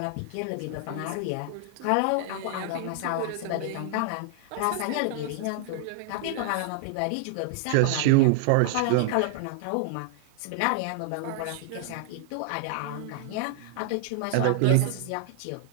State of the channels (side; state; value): both; different; correlation -0.01